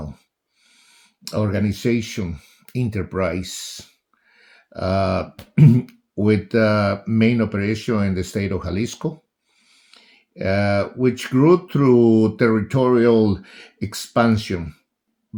organization enterprise uh, with main operation in the state of Jalisco which grew through territorial expansion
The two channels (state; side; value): identical; both; correlation 1.00